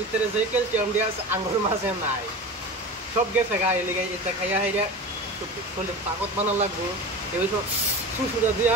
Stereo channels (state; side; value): normal; both; correlation 0.31